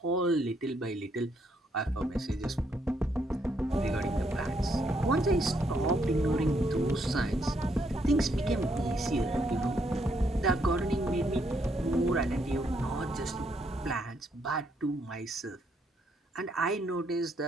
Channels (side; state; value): both; normal; correlation 0.74